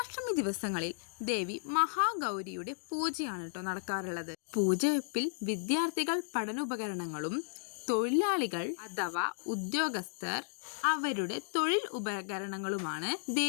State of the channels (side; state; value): right; silent; digital silence